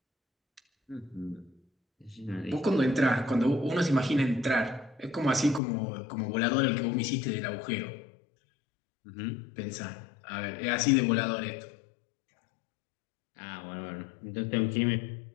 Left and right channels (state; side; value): drops out; right; at 5.6 s